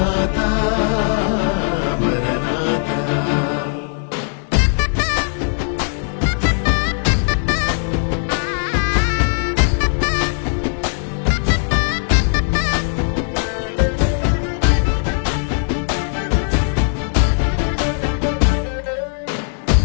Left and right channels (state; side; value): silent; right; 55 dB below the other